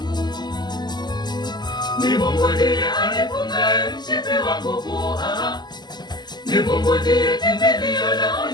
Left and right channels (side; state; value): right; late; 0.21 ms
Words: Ni Mungu ndiye anifungaye mshipi wa nguvu. Ni Mungu ndiye kimbilio la